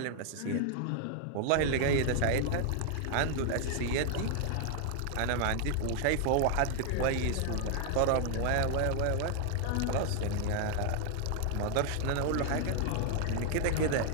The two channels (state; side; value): different; both; correlation 0.00